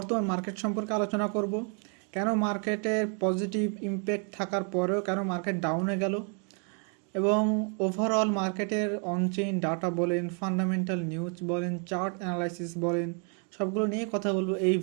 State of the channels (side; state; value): left; quieter; 39.4 dB